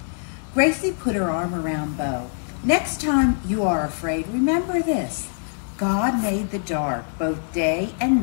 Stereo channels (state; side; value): silent; right; digital silence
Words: Gracie put her arm around Bo. "Next time you are afraid, remember this. God made the dark. Both day and